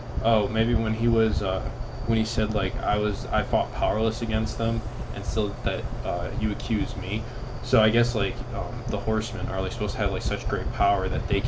Oh, maybe when he was when he said like I fought powerless against them, and still that you accuse me. So I guess like the horsemen are like supposed to have like such great power that they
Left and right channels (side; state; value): both; identical; correlation 1.00